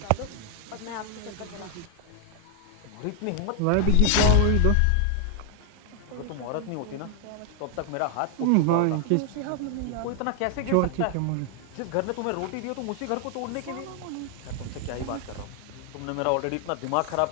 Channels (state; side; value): different; both; correlation 0.00